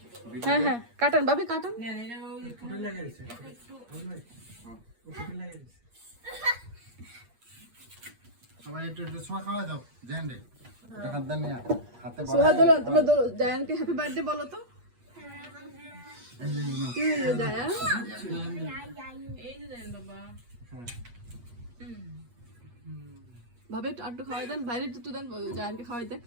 হ্যাঁ হ্যাঁ কাটেন ভাবি কাটেন সবাই একটু একটু ছোঁয়া খাওয়া দাও জেন্ডে দেখা দেন না হাতে সোহা দোলো তোমরা জায়ানকে হ্যাপি বার্থডে বলো তো জায়ান ভাবে একটু খাওয়াই দেন বাইরে একটু দেন জায়ানকে খাওয়াই দেন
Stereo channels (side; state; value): left; late; 8.5 ms